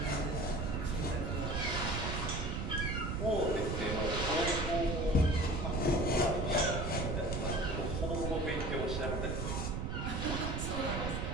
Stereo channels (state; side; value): noise; right; rumble, 1 dB below the sound